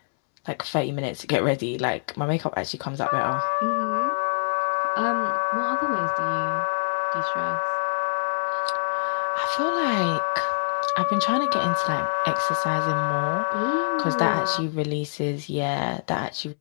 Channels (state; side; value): silent; right; 62 dB below the other